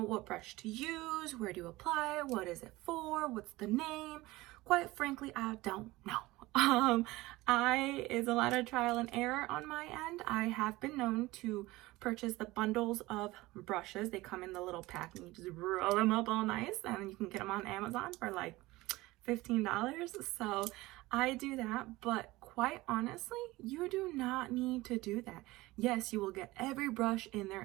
what brush to use, where to apply it, what is it for, what's the name. Quite frankly, I don't know. It's a lot of trial and error on my end. I have been known to purchase the bundles of brushes. They come in the little pack and you just roll them up all nice, and you can get them on Amazon for like $15. So I do that, but quite honestly, you do not need to do that. Yes, you will get every brush in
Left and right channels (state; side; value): quieter; left; 19.6 dB